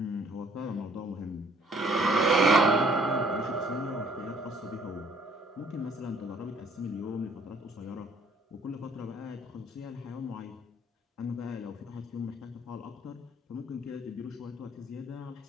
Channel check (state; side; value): normal; both; correlation 0.60